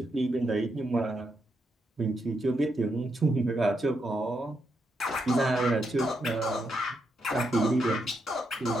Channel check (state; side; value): normal; both; correlation 0.81